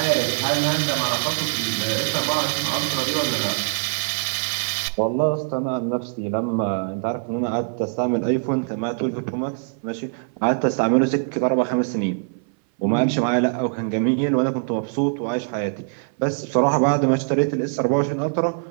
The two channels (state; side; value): silent; left; 59 dB below the other